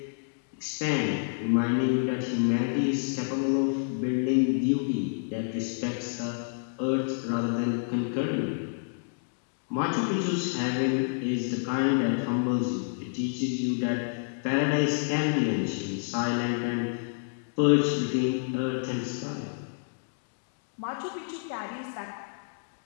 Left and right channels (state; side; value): silent; right; digital silence